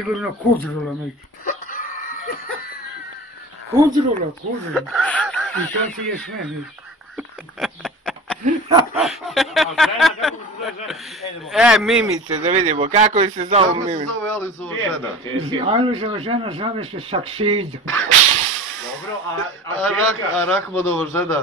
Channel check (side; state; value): both; normal; correlation 0.36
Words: Kudrula neki. Kudrula. I to ti je sve neki. Mimice, da vidimo, kako se zove Mimice? Kako se zove Alojzova žena? Alojzova žena zove se Saksida. Dobro, a Rahmanova